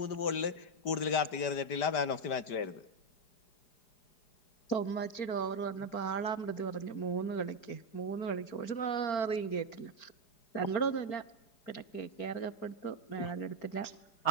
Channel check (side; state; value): right; late; 4.8 ms